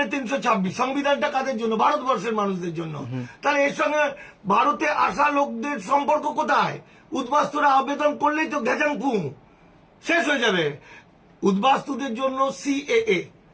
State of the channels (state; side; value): identical; both; correlation 1.00